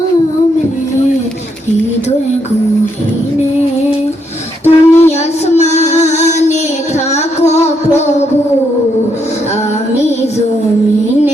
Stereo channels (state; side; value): normal; both; correlation 0.76